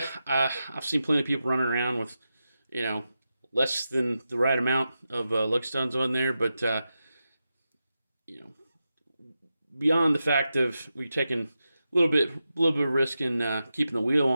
I've seen plenty of people running around with, you know, less than the right amount of lug studs on there, but you know, beyond the fact of we taking a little bit of risk in keeping the wheel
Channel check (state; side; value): inverted; both; correlation -0.90